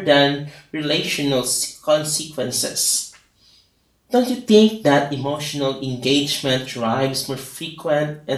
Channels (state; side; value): identical; both; correlation 1.00